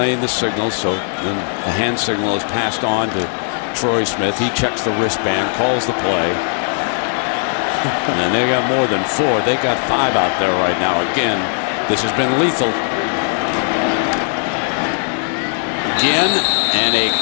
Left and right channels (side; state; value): right; silent; 59 dB below the other